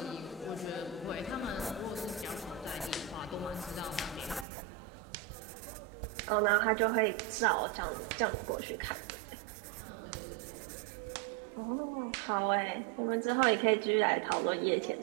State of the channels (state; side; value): drops out; left; at 4.5 s